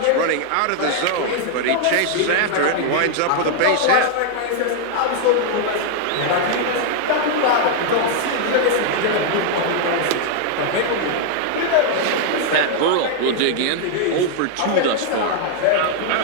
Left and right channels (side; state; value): both; different; correlation 0.00